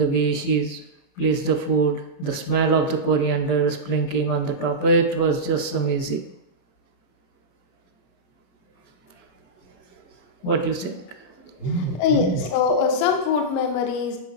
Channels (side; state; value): right; late; 30 ms